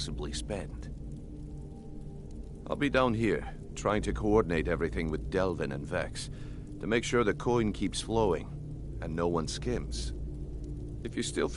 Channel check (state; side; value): identical; both; correlation 1.00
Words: spend. I'll be down here, trying to coordinate everything with Delvin and Vex, to make sure the coin keeps flowing, and no one skims. If you still